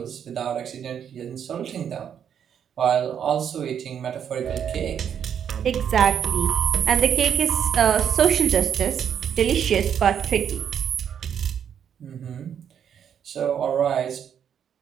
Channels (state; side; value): quieter; left; 8.5 dB